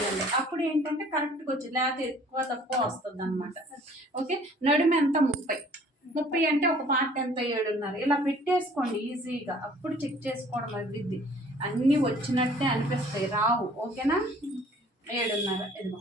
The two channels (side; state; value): both; normal; correlation 0.54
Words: అప్పుడు ఏంటంటే కరెక్ట్గా వచ్చింది, లేకపోతే ఎక్కువ తక్కువ వస్తుంది అనమాట. ఓకే, నడుము ఎంత 30 అంటే ఒక పార్ట్ ఎంత 7.5 ఇలా పెట్టేసుకోండి ఈజీగా. అప్పుడు చెక్ చేసుకోవడం అభివృద్ధి. అన్నీ వచ్చినట్టే అనిపిస్తాయి, రావు. ఓకేనా, 7.5 ఇదిగో